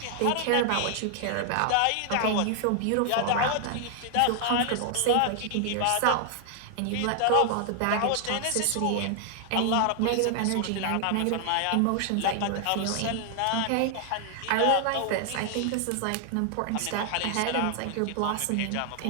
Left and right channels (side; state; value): both; different; correlation 0.00